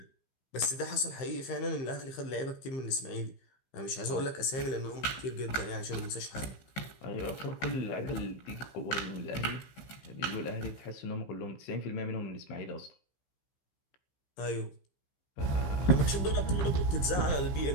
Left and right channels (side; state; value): right; late; 15 ms